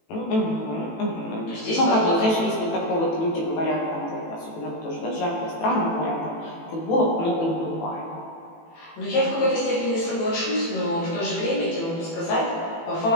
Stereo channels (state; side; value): late; right; 18 ms